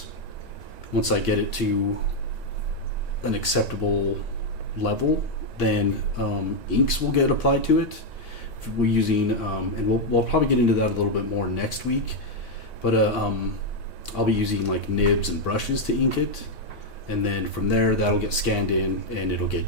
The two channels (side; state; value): right; late; 1.9 ms